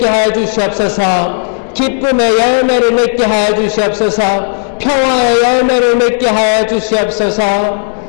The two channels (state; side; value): silent; right; 69 dB below the other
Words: 하여 주시옵소서. 기쁨의 열매를 맺게 하여 주시옵소서. 평화의 열매를 맺게 하여 주시옵소서.